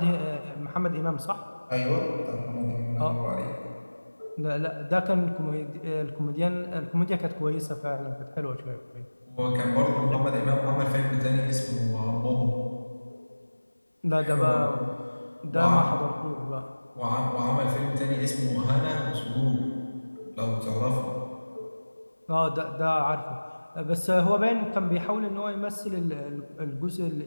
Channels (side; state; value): both; inverted; correlation -1.00